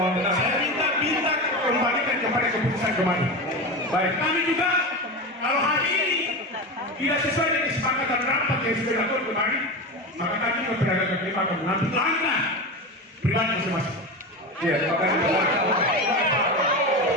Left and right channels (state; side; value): normal; both; correlation 0.23